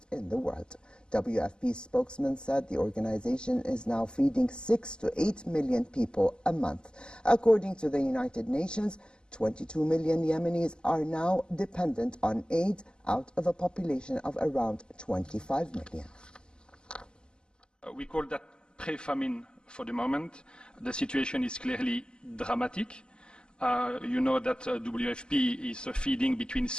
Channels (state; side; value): late; right; 0.047 ms